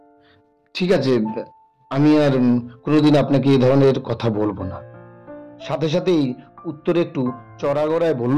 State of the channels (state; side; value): identical; both; correlation 1.00